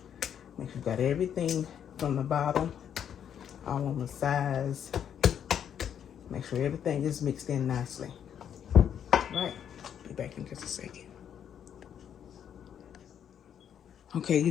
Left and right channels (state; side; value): quieter; right; 8.9 dB